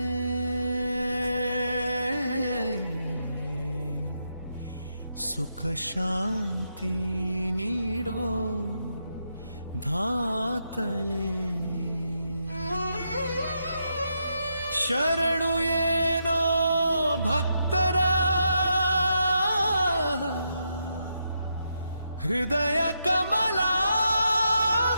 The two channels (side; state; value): both; inverted; correlation -0.82